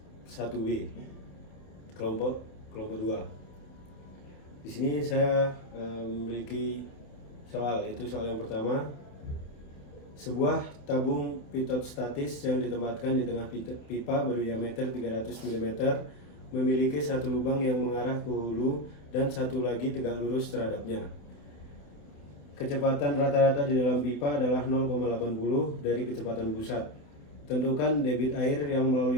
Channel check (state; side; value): late; right; 28 ms